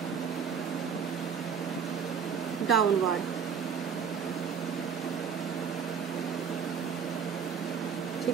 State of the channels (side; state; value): left; quieter; 6.8 dB